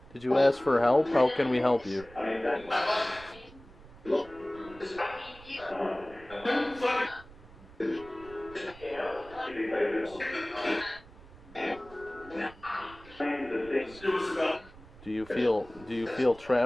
Did you ask for help? How can we help you? Do you feel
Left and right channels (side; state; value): right; noise; rumble, 21 dB below the sound